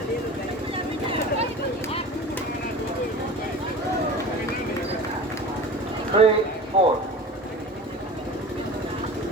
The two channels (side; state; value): both; normal; correlation 0.36